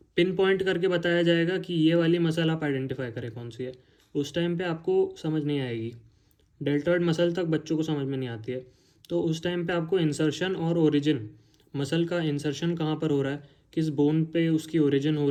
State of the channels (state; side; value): identical; both; correlation 1.00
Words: पिन पॉइंट करके बताया जाएगा कि ये वाली मसल आप आइडेंटिफाई करें कौन सी है। उस टाइम पे आपको समझ नहीं आएगी। डेल्टॉइड मसल तक बच्चों को समझ में नहीं आती है। तो उस टाइम पे आपको इंसर्शन और ओरिजिन, मसल का इंसर्शन कहाँ पर हो रहा है, किस बोन पे उसकी ओरिजिन हो